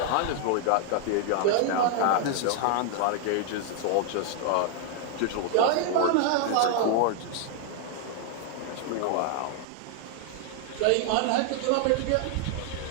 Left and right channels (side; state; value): both; different; correlation 0.00